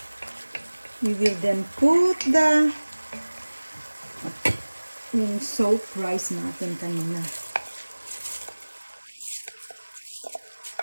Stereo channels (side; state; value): both; inverted; correlation -1.00